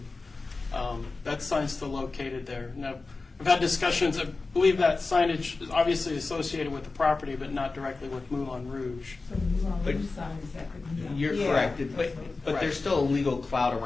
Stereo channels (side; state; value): right; quieter; 3.8 dB